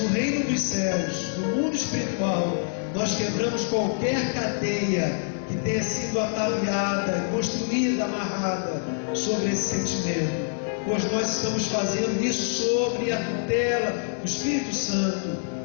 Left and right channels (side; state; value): right; silent; digital silence